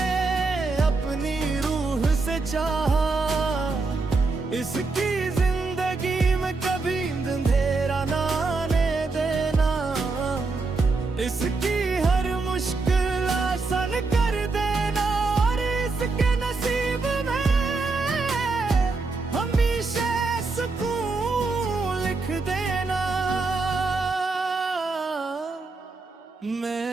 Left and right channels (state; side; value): quieter; left; 3.9 dB